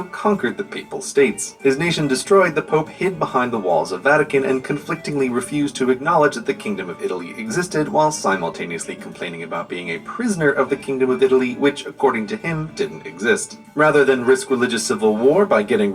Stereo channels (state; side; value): identical; both; correlation 1.00